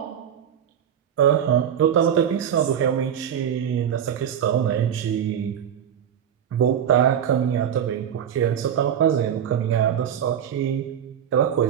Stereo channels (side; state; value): left; quieter; 9.1 dB